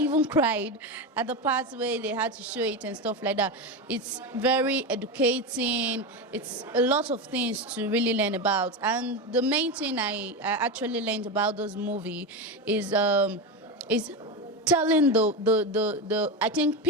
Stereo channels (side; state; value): both; normal; correlation 0.17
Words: cried at the parts where they had to show it and stuff like that. It's very educating. It's a lot of things to really learn about. And the main thing I actually learned about this movie is telling I think